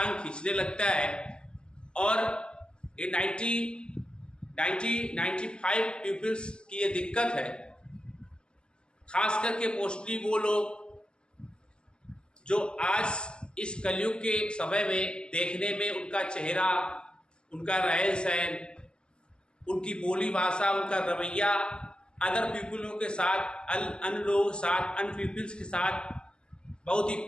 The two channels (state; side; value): late; right; 0.053 ms